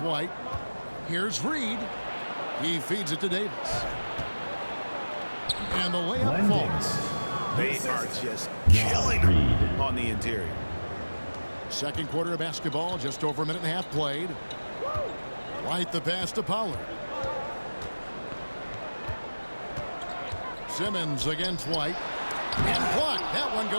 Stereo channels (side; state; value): both; inverted; correlation -1.00